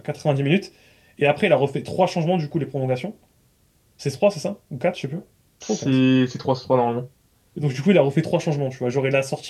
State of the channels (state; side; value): identical; both; correlation 1.00